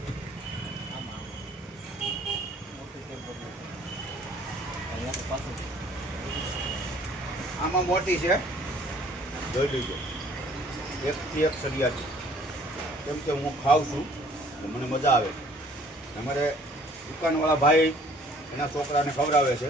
આમાં મોટી છે, જોઈ લીજો. એકથી એક સળિયા છે. કેમ કે હું ખાઉં છું તો મને મજા આવે. અમારે દુકાનવાળા ભાઈ એના છોકરાને ખવડાવે છે.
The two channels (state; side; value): normal; both; correlation 0.56